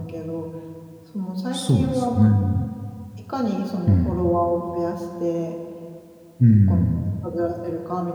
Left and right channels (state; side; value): identical; both; correlation 1.00